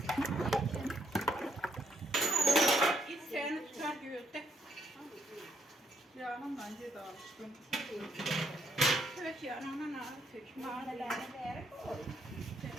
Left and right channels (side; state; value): both; normal; correlation 0.73